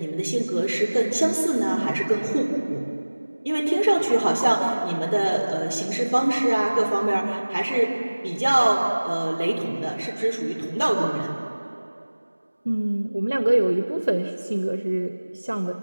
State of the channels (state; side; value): inverted; both; correlation -1.00